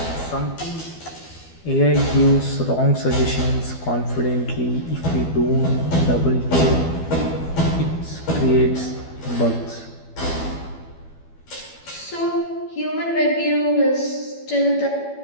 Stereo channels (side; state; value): right; late; 12 ms